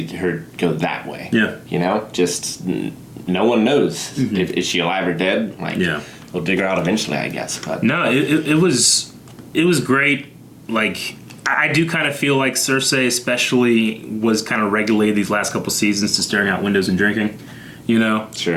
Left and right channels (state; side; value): identical; both; correlation 1.00